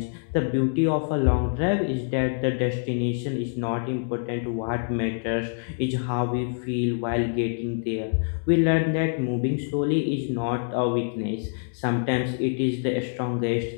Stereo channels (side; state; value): right; silent; 61 dB below the other